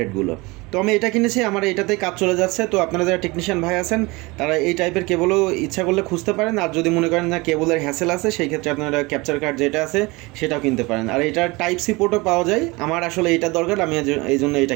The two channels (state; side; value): quieter; left; 24.1 dB